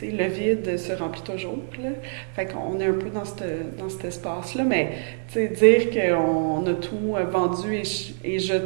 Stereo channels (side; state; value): left; silent; 62 dB below the other